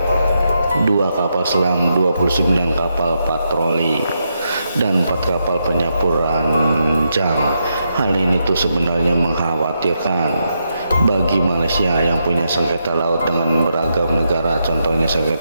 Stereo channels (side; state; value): both; inverted; correlation -0.82